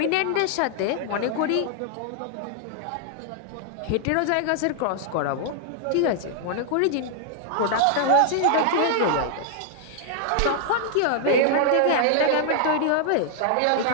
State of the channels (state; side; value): different; both; correlation 0.00